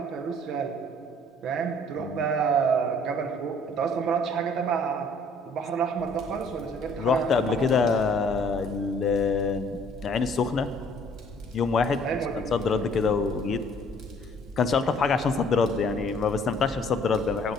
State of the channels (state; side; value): normal; both; correlation 0.58